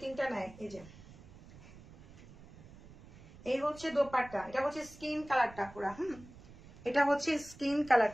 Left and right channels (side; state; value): right; noise; rumble, 20 dB below the sound